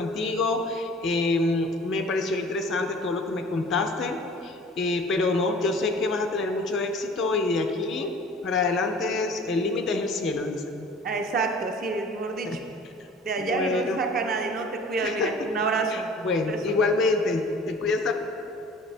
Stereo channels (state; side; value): normal; both; correlation 0.46